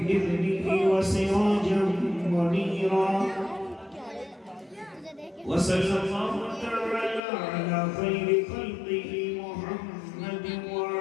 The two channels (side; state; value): right; drops out; at 7.2 s